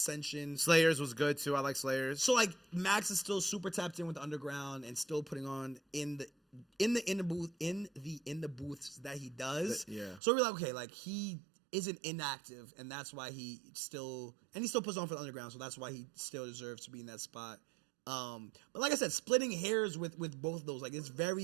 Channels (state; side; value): drops out; left; at 10.2 s